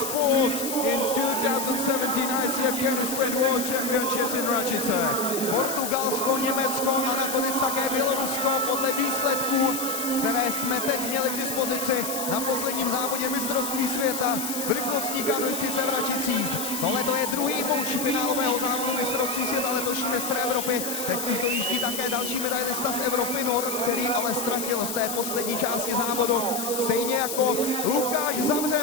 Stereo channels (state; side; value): noise; left; hiss, 5 dB below the sound